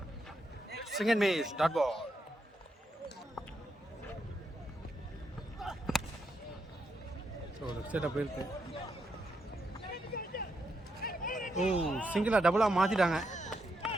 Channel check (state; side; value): normal; both; correlation 0.81